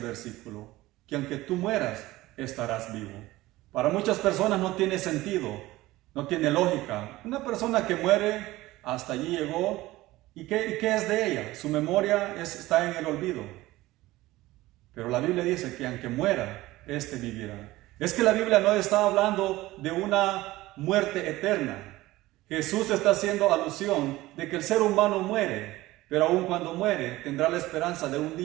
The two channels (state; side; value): quieter; left; 17.9 dB